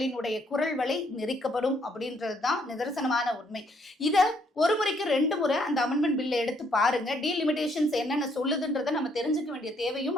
குரல் வலை நெரிக்கப்படும் அப்படின்றது தான் நிதர்சனமான உண்மை. இத ஒரு முறைக்கு 2 முறை அந்த அமெண்ட்மெண்ட் பில்லை எடுத்து பாருங்க. டீலிமிட்டேஷன்ஸ் என்னென்ன சொல்லுதுன்றதை நம்ம தெரிஞ்சுக்க வேண்டிய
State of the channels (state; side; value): normal; both; correlation 0.69